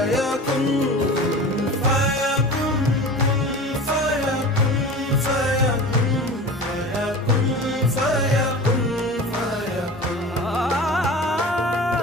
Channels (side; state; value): both; normal; correlation 0.35